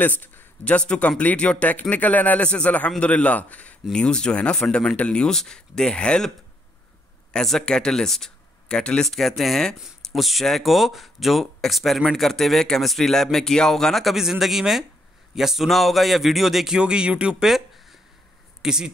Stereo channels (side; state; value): both; normal; correlation 0.73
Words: just to complete your technical analysis. अल्हम्दुलिल्लाह, न्यूज़ जो है ना, fundamental news, they help as a catalyst. Catalyst कहते हैं उस शय को जो एक्सपेरिमेंट करते हुए केमिस्ट्री लैब में किया होगा ना कभी ज़िंदगी में, या सुना होगा या वीडियो देखी होगी यूट्यूब पे, किसी